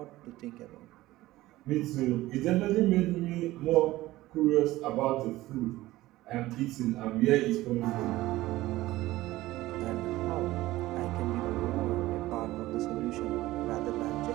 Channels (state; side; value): quieter; left; 17.1 dB